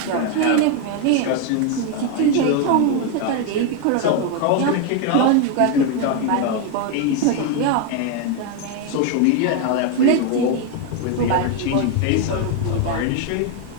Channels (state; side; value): different; both; correlation 0.01